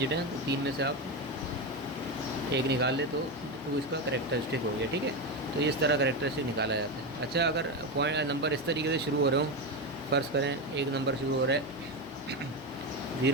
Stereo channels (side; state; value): both; normal; correlation 0.14